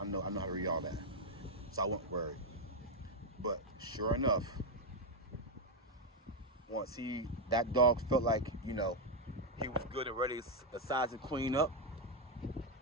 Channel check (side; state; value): both; normal; correlation 0.02